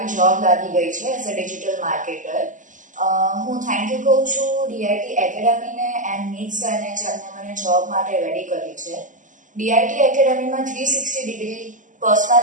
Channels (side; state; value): left; late; 0.37 ms